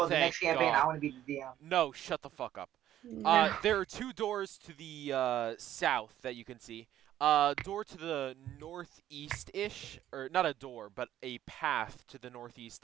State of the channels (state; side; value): quieter; left; 12.2 dB